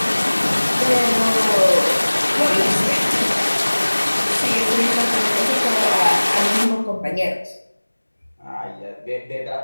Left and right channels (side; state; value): both; inverted; correlation -1.00